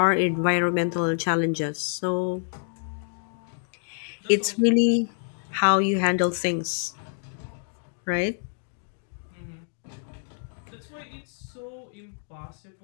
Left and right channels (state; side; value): silent; right; digital silence